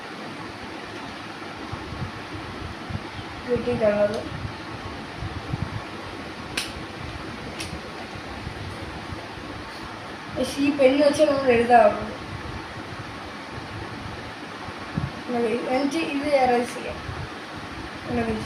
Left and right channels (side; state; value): both; identical; correlation 1.00